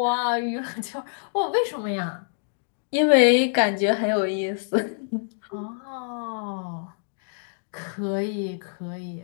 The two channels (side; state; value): right; silent; digital silence